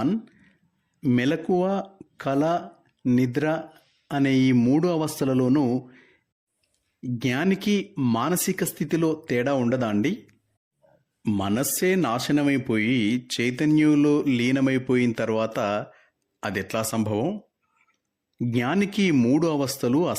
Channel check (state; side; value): identical; both; correlation 1.00